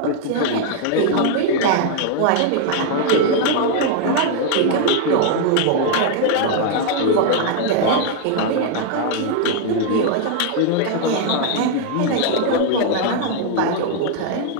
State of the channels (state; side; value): different; both; correlation 0.00